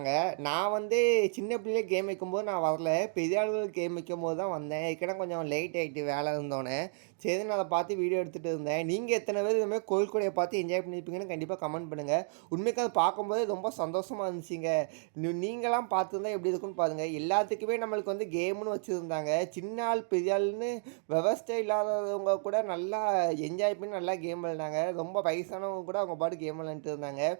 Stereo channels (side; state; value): left; silent; digital silence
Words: நான் சின்ன பிள்ளையே கேம் வைக்கும்போது நான் வரல, பெரிய ஆளுகள் கேம் வைக்கும்போது தான் வந்தேன். ஏற்கனவே கொஞ்சம் லேட் ஆகிட்டு வேலை இருந்தோன்னே. சரி, நான் அதை பார்த்து வீடியோ எடுத்துகிட்டு இருந்தேன். நீங்கள் எத்தனை பேர் இதுமாதிரி கோயில் கொடையை பார்த்து என்ஜாய் பண்ணியிருப்பீங்கன்னு கண்டிப்பாக கமெண்ட் பண்ணுங்கள். உண்மைக்கு அதை பார்க்கும்போது ரொம்ப சந்தோஷமாக இருந்துச்சுங்க. நீங்களாம் பார்த்துருந்தா எப்படி இருக்குன்னு பாருங்கள். எல்லாத்துக்குமே நம்மளுக்கு கேம்னு வச்சுருந்தாங்க. சின்ன ஆள் பெரிய ஆள்னு விவசாய இல்லாதவங்க கூட நல்லா என்ஜாய் பண்ணி நல்லா கேம் விளையாண்டாங்க. ரொம்ப வயசானவங்க கூட அவங்க பாட்டு கேம் விளையாண்டுட்டு இருந்தாங்க.